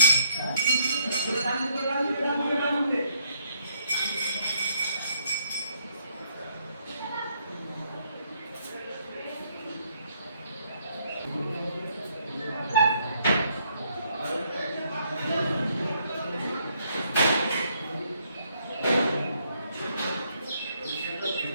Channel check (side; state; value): both; inverted; correlation -0.71